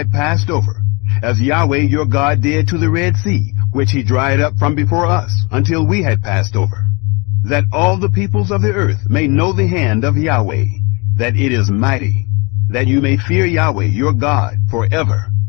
passed over, as Yahweh your God did to the Red Sea, which he dried up from before us, until we had passed over, that all the peoples of the earth may know the hand of Yahweh, that it is mighty, that you may fear Yahweh your God forever.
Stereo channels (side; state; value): right; quieter; 28.8 dB